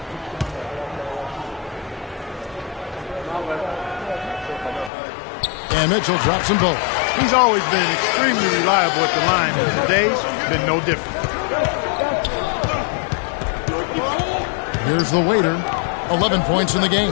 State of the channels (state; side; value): drops out; right; at 4.9 s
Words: And Mitchell drops them both. He's always been extremely reliable at the line, and today's been no different. Here's the Waiter. 11 points in the